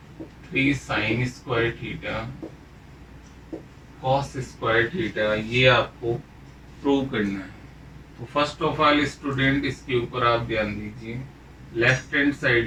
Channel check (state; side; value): identical; both; correlation 1.00